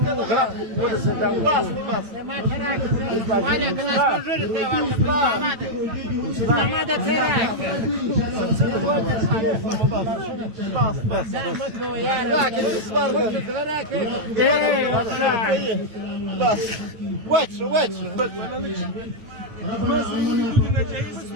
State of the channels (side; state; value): left; late; 9.0 ms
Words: وغرق ولا زداو ولا كنا نجرب ماذا تراك بس واتش